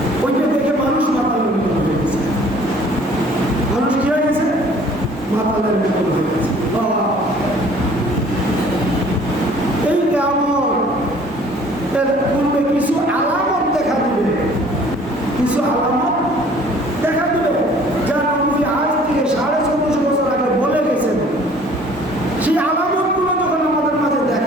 ওইটা দেখে মানুষ মাতালের মতো হয়ে গেছে। মানুষ কি হয়ে গেছে? মাতালের মতো হয়ে গেছে। এই কিয়ামতের পূর্বে কিছু আলামত দেখা দিবে, কিছু আলামত দেখা দিবে, যা নবী আজ থেকে 1450 বছর আগে বলে গেছেন। সেই আলামতগুলো যখন আমাদের মাঝে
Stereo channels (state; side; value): normal; both; correlation 0.53